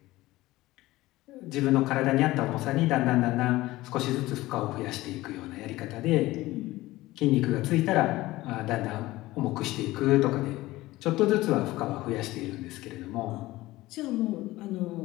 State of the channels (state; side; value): quieter; right; 18.1 dB